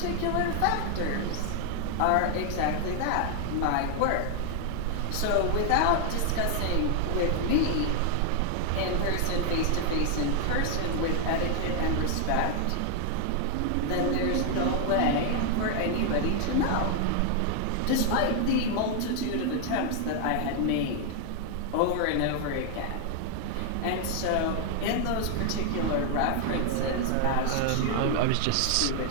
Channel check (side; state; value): both; different; correlation 0.00